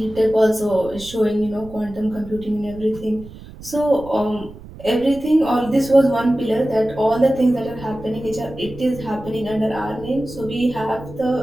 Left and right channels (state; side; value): noise; right; rumble, 17 dB below the sound